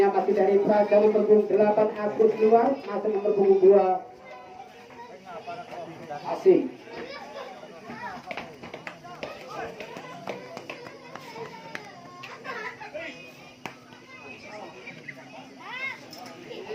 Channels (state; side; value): identical; both; correlation 1.00